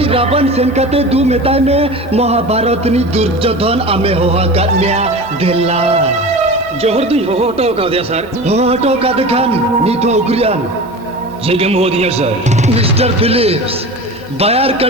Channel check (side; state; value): both; normal; correlation 0.33